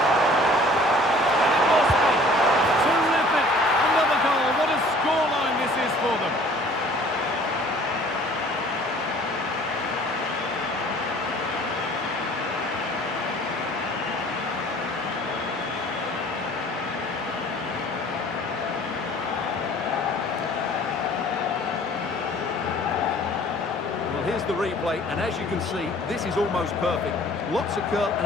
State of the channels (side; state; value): both; normal; correlation 0.51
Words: And it must be. Terrific. Another goal. What a scoreline this is for them. Here's the replay, and as you can see, this is almost perfect. Lots of curl